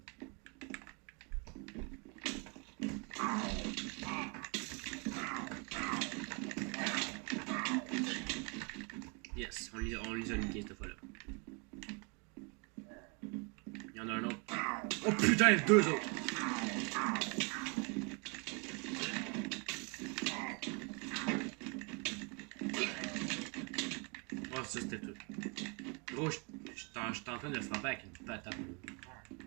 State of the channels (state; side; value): quieter; left; 33.5 dB